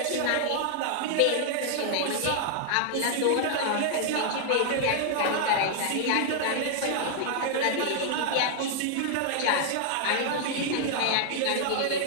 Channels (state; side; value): different; both; correlation -0.01